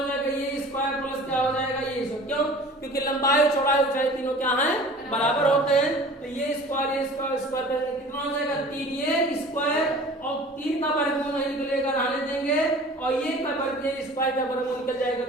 जाएगा, ये स्क्वायर प्लस क्या हो जाएगा, ये स्क्वायर। क्यों, क्योंकि लंबाई चौड़ाई ऊंचाई तीनों क्या हैं, बराबर होते हैं। तो ये स्क्वायर स्क्वायर करके कितना हो जाएगा, 3 ये स्क्वायर, और 3 का वर्गमूल नहीं निकलेगा, रहने देंगे, और ये का वर्ग, ये स्क्वायर का वर्गमूल निकल जाएगा,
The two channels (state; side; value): normal; both; correlation 0.44